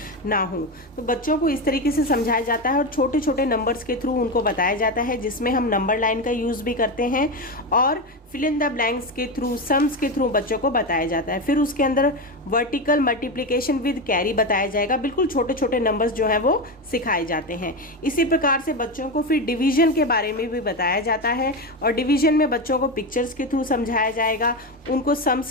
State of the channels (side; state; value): both; normal; correlation 0.16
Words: ना हो। तो बच्चों को इस तरीके से समझाया जाता है, और छोटे छोटे नंबर्स के थ्रू उनको बताया जाता है, जिसमें हम नंबर लाइन का यूज़ भी करते हैं, और फिल इन द ब्लैंक्स के थ्रू, सम्स के थ्रू बच्चों को बताया जाता है। फिर उसके अंदर वर्टिकल मल्टीप्लिकेशन विद कैरी बताया जाएगा। बिल्कुल छोटे छोटे नंबर्स जो हैं वो सिखाए जाते हैं। इसी प्रकार से बच्चों को फिर डिवीजन के बारे में भी बताया जाता है, और डिवीजन में बच्चों को पिक्चर्स के थ्रू समझाया जाएगा, उनको